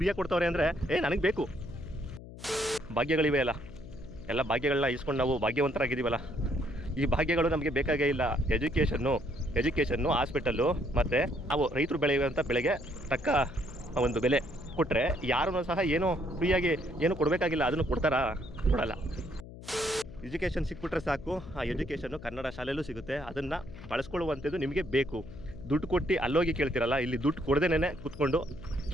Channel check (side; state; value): left; noise; hum, 15 dB below the sound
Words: ಕೊಡ್ತವ್ರೆ ಅಂದರೆ ನನಗೆ ಬೇಕು. ಭಾಗ್ಯಗಳಿವೆ ಅಲ್ಲ, ಎಲ್ಲ ಭಾಗ್ಯಗಳನ್ನ ಇಸ್ಕೊಂಡು ನಾವು ಭಾಗ್ಯವಂತರಾಗಿದ್ದೀವಲ್ಲ. ಈ ಭಾಗ್ಯಗಳು ನಮಗೆ ಬೇಕಾಗೇ ಇಲ್ಲ. ಎಜುಕೇಷನ್ನು ಹಾಸ್ಪಿಟಲ್ಲು ಮತ್ತು ನಾವು ರೈತರು ಬೆಳೆಯುವಂಥ ಬೆಳೆಗೆ ತಕ್ಕ ಒಂದು ಬೆಲೆ ಕೊಟ್ಟರೆ ಯಾರೂ ಸಹ ಏನೂ ಫ್ರೀಯಾಗಿ ಏನು ಕೊಡಬೇಕಾಗಿಲ್ಲ. ಅದನ್ನು ಕೊಡ್ತಾರಾ? ಕೊಡಲ್ಲ. ಎಜುಕೇಷನ್ ಸಿಕ್ಬಿಟ್ರೆ ಸಾಕು. ಆ ಎಜುಕೇಷನ್ನು ಕನ್ನಡ ಶಾಲೆಯಲ್ಲೂ ಸಿಗುತ್ತೆ. ಅದನ್ನು ಬಳಸ್ಕೊಳ್ಳುವಂಥದ್ದು ನಿಮಗೆ ಬೇಕು. ದುಡ್ಡು ಕೊಟ್ಟು ಅಲ್ಲೋಗಿ ಕೇಳ್ತಿರಲ್ಲ, ಇಲ್ಲಿ ದುಡ್ಡು ಕೊಡದೇನೆ ಕೂತ್ಕೊಂಡು